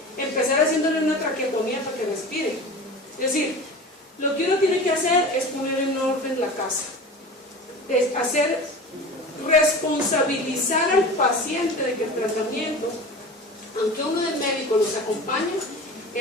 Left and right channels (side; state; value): both; normal; correlation 0.34